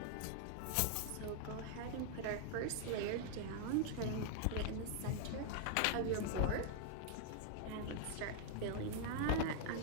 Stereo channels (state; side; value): different; both; correlation 0.00